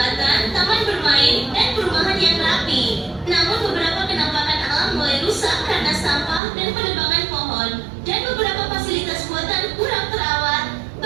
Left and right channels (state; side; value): drops out; left; at 6.4 s